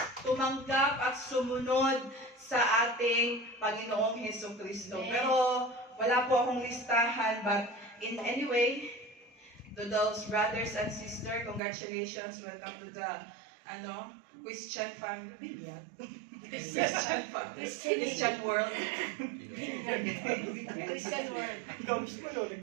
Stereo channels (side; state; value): left; drops out; at 11.6 s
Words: tumanggap at sumunod sa ating Panginoong Hesus Kristo. Pero wala po akong listahan, but in any way, to those brothers and sisters, congratulations, welcome to the Christian family. Christian family. Christian world. Christian world. Ikaw mismo yun.